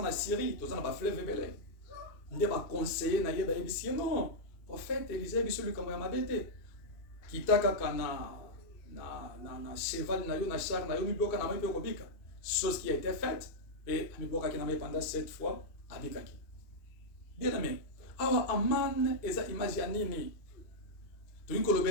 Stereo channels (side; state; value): right; late; 2.5 ms